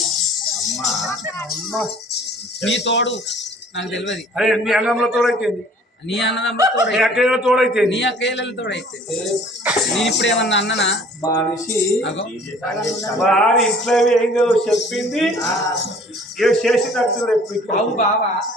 నీ తోడు నాకు తెలియదు అరే నీ అన్నంలో తోడైతుంది నీ అన్నదమ్ములతో నీ అక్కయ్యలో తోడైతే నీ అక్కయ్యలతో అయితే నేను ఇప్పుడు ఏమన్నా అన్ననా మనిషి అగో వాడి ఇంట్లో ఏం చెప్పింది ఏ చేసినట్టు అవు బావా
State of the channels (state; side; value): normal; both; correlation 0.52